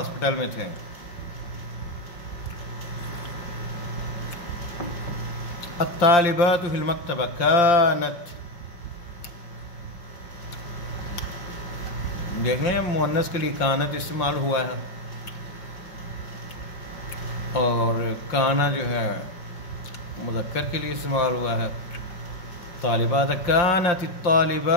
میں تھے. الطالبات فی المکتبہ کانت، دیکھیں مؤنث کے لیے کانت استعمال ہوا ہے، اور کانا جو ہے مذکر کے لیے استعمال ہوا ہے. طالبات کانت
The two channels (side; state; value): right; late; 5.8 ms